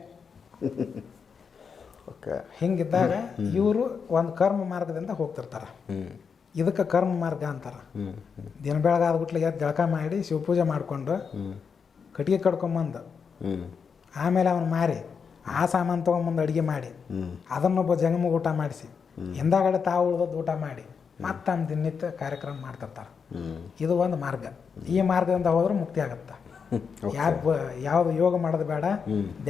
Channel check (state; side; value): quieter; right; 6.1 dB